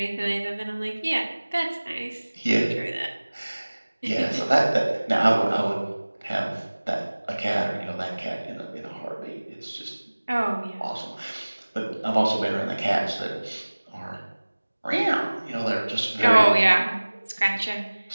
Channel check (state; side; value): inverted; both; correlation -1.00